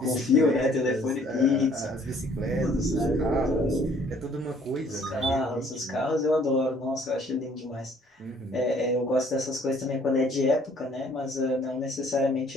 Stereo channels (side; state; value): both; normal; correlation 0.59